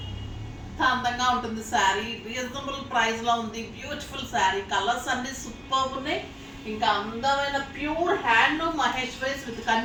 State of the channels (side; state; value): both; identical; correlation 1.00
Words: అందంగా ఉంటుంది శారీ. రీజనబుల్ ప్రైస్ లో ఉంది. బ్యూటిఫుల్ శారీ. కలర్స్ అన్ని సూపర్ ఉన్నాయి. ఇంకా అందమైన pure handloom Maheshwaris with